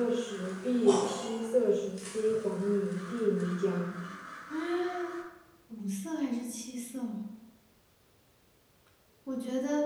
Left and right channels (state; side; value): identical; both; correlation 1.00